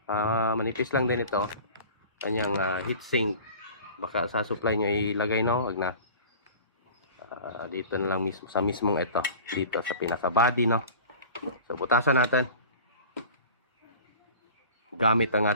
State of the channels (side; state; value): both; inverted; correlation -0.41